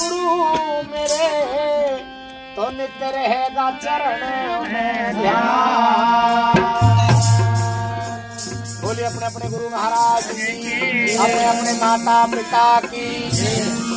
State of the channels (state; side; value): identical; both; correlation 1.00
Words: मेरे, तो नित्य रहेगा चरण में ध्यान। बोलिए अपने अपने गुरु महाराज की, अपने अपने माता पिता की।